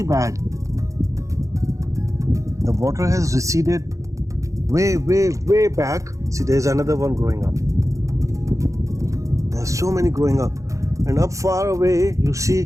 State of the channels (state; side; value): late; left; 0.15 ms